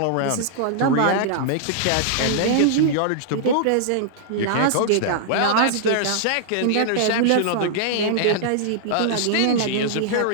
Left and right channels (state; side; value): different; both; correlation -0.01